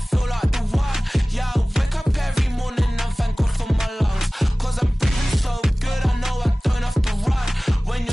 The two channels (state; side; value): normal; both; correlation 0.98